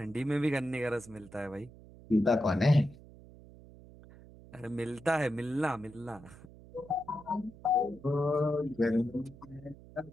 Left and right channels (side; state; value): right; noise; hum, 20 dB below the sound